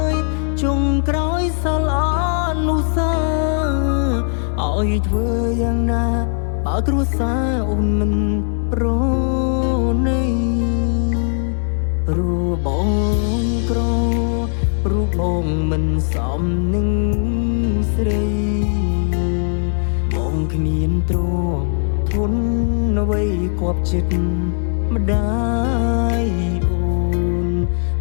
យចុងក្រោយសល់អនុស្សាវរីយ៍ឲ្យធ្វើយ៉ាងណាបើគ្រួសារអូនមិនប្រណីព្រោះបងក្រព្រោះបងមិនសមនឹងស្រីបងគ្មានទ្រព្យធនអ្វីគប់ចិត្តម្ដាយអូន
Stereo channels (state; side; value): silent; right; 66 dB below the other